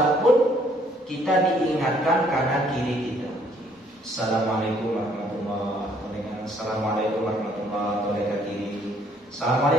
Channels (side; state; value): both; normal; correlation 0.64